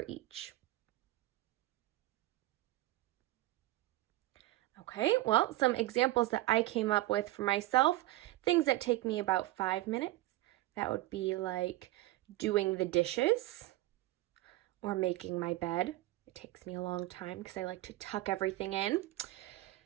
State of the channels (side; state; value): left; quieter; 17.4 dB